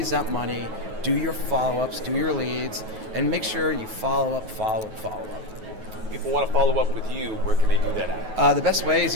that money, do your follow-ups, do your leads, and make sure you follow up. People want to follow up with you, where can they do that at? The best way is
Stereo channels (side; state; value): left; late; 9.3 ms